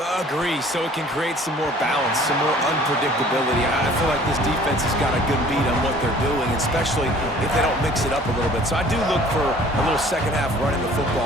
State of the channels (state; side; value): normal; both; correlation 0.52